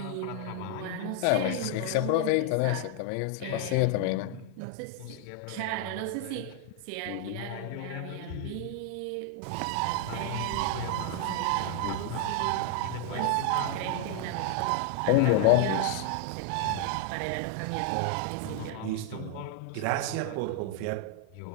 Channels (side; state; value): both; different; correlation 0.00